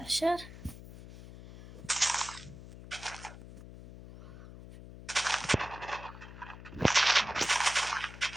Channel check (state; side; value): noise; left; hum, 15 dB below the sound